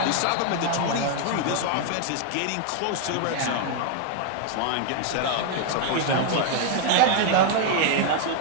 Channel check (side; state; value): both; different; correlation 0.00